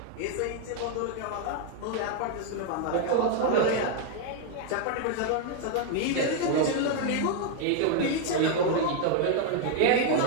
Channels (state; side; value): different; both; correlation 0.00